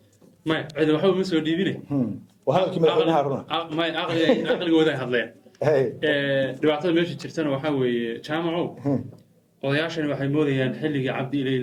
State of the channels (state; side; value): identical; both; correlation 1.00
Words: maya cid waxba ma soo dhiibine waa hadalkii madaxweynaha runa maya aqligooda ay hadleen dhibaatada meesha jirtana waxaa weeye jaamacow odayaashani waxay moodayaan xilligii cabdi ilay